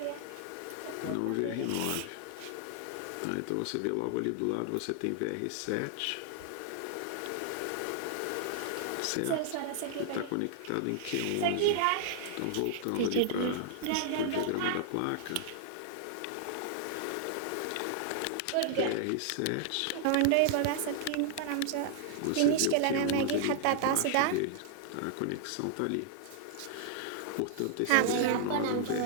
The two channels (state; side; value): different; both; correlation -0.01